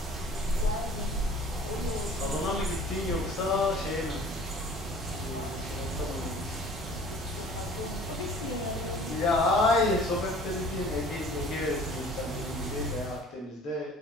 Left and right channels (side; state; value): both; normal; correlation 0.48